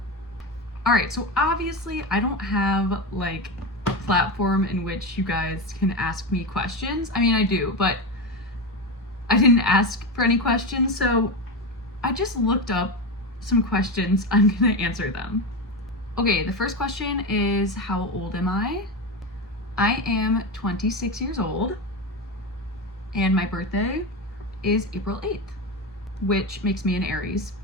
Alright, so obviously I don't have like a platform in which you guys can ask me questions. I mean, I do, but I didn't ask for any questions, so I just looked up some questions. I'm gonna answer them. Okay, the first question is, how old am I? I am 26 years old, and my birthday is April 8th, which makes me an Aries.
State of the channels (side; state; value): both; normal; correlation 0.18